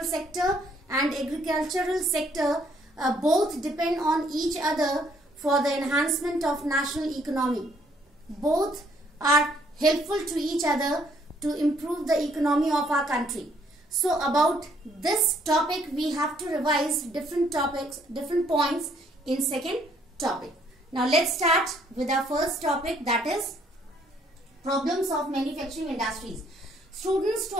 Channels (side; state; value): both; normal; correlation 0.66